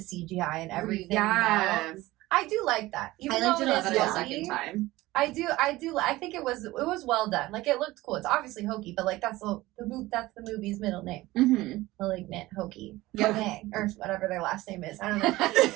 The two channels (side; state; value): left; quieter; 18.4 dB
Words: and everything. Yeah. melts. I do like that. Even I liked though it a lot is the hokey, second time. I do. I think it was well done. Like, it looked cool. It's obviously hokey, but like that's the movie's middle name. Mm-hmm. Malignant, hokey, Yeah. Monet, or whatever their last name is. I don't